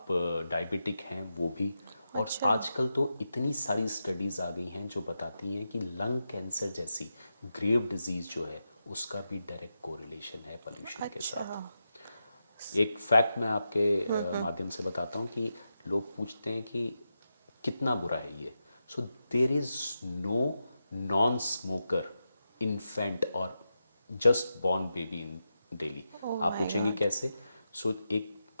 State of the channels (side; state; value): both; inverted; correlation -0.89